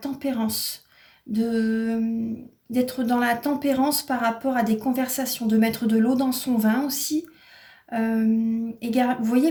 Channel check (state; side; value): identical; both; correlation 1.00